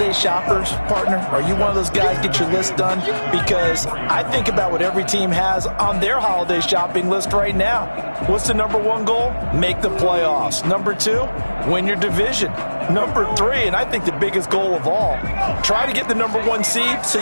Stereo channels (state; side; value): inverted; both; correlation -1.00